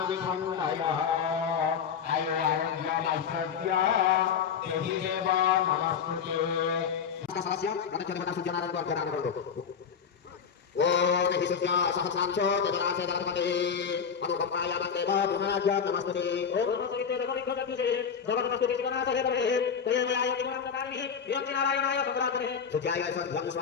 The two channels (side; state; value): right; quieter; 7.0 dB